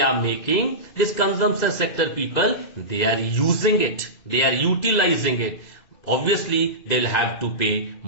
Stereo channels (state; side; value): late; right; 2.0 ms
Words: making, this consumption sector people, they are using it, they are utilizing it. Obviously they will have to pay